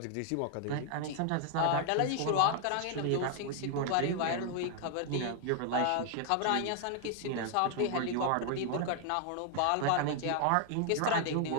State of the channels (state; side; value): different; both; correlation 0.00